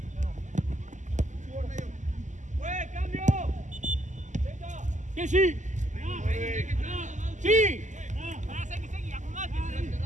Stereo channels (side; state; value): left; late; 0.35 ms